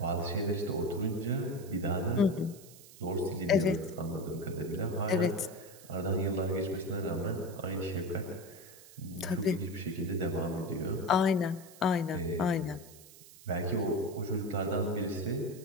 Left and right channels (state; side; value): noise; right; hiss, 20 dB below the sound